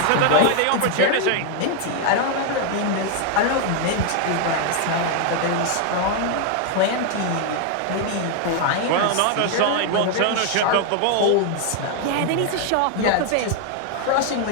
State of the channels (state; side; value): different; both; correlation 0.00